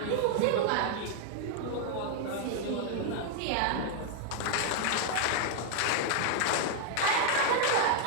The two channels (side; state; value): both; different; correlation 0.00